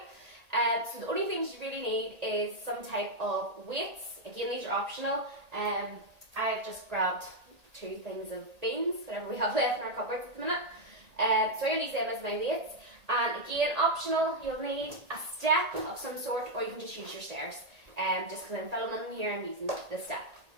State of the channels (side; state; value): left; late; 1.8 ms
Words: So the only things you really need is some type of weights. Again, these are optional. I've just grabbed 2 things of beans, whatever we have left in our cupboards at the minute. So I'm going to use them as my weights. And again, optional, you'll need a step of some sort, or you can just use your stairs. Just because I'm filming here, I'm using the step.